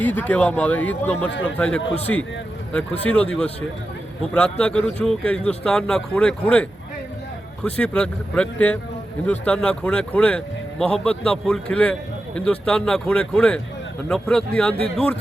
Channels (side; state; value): both; normal; correlation 0.91